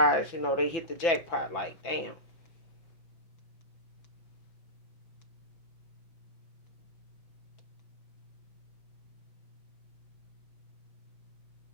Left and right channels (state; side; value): late; right; 5.9 ms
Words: they hit the jackpot. Like, damn.